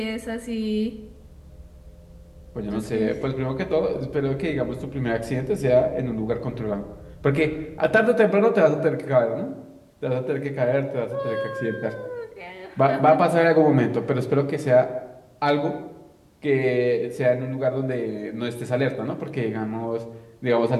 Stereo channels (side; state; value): both; identical; correlation 1.00